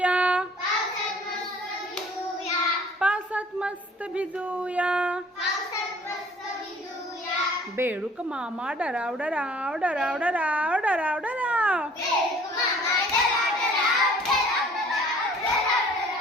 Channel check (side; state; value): both; normal; correlation 0.53